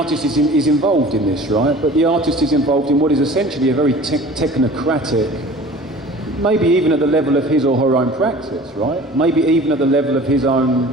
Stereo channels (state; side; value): normal; both; correlation 0.43